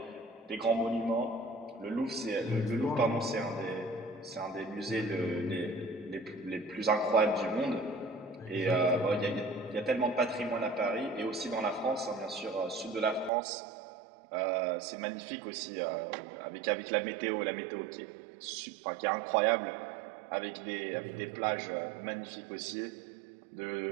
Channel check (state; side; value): drops out; left; at 13.3 s